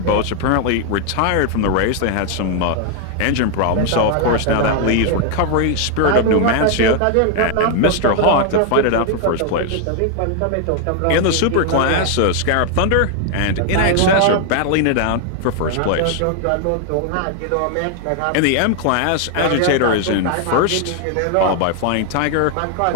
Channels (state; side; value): different; both; correlation 0.00